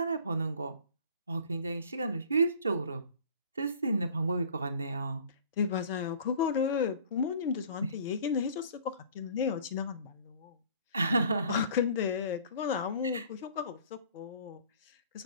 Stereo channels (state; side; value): inverted; both; correlation -0.49